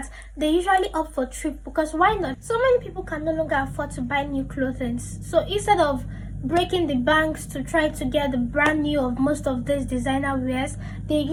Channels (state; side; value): identical; both; correlation 1.00